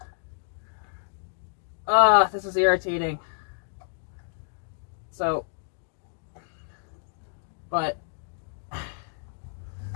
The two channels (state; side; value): silent; right; digital silence